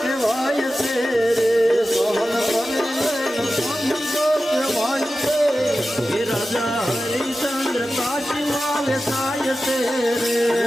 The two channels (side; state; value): both; normal; correlation 0.94